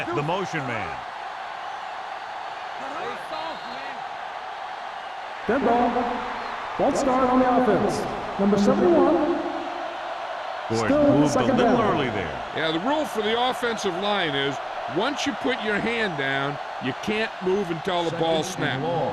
the motion man. Dead ball. False start on the offense. Number 71. Gordon Still moved a second little down. early there. Yeah, the rule for the offensive line is once you put your hand down, you can't move until the ball snaps.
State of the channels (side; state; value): both; identical; correlation 1.00